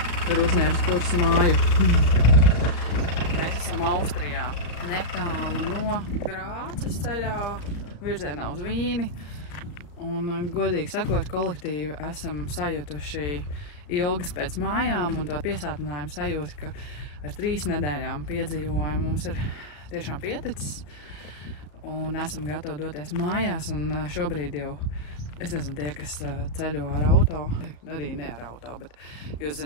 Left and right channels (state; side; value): late; right; 34 ms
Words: ir uzņēmis kursu māju. Mēs esam Austrijā, netālu no Grāces ceļā, virzienā uz Vīni. Un, godīgi sakot, kolektīvi esam sajutuši ilgas pēc mājām, un to piesātinājumu sajūta, ka ar 3 nedēļām piedzīvojumu mums ir tiešām pieticis. Un esam gatavi doties mājās, un šobrīd jau, es nezinu, tie, kas ceļo ar auto, arī ne ar auto, bet jūs